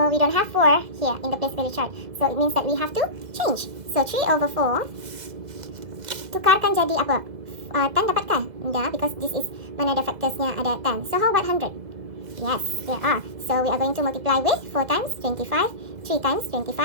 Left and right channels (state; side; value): late; left; 2.0 ms